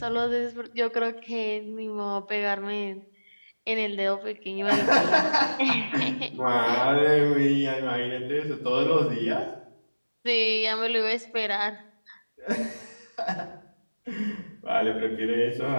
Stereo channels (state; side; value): inverted; both; correlation -1.00